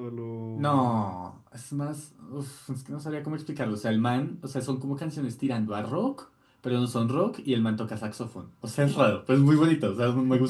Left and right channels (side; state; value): both; identical; correlation 1.00